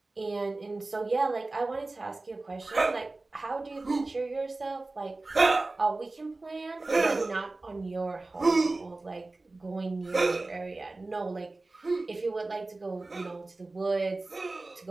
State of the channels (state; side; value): quieter; left; 3.2 dB